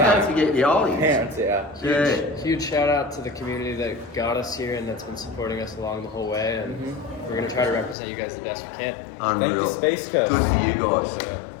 time. forget your ollies. Hands, yeah. Yeah. Huge shout out to the community that got us here and that's been supporting us along the whole way. And we're going to try to represent you guys the best we can. Unreal. Thank you, Space Coast. Good for you guys. Yeah.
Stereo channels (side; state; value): right; drops out; at 8.0 s